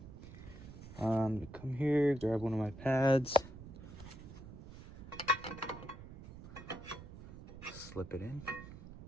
Come here, grab one of my pads, slip it in.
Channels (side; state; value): right; noise; rumble, 14 dB below the sound